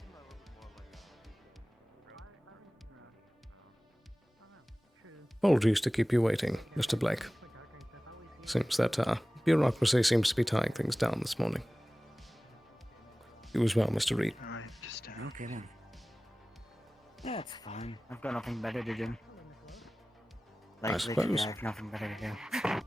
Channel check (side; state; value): both; normal; correlation 0.98